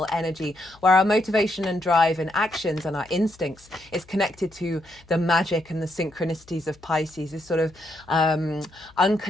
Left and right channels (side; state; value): left; noise; hum, 27 dB below the sound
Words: energy where our motivation and drive and actions and our instincts is connected to the magic and the synchronicities of Pisces. This sort of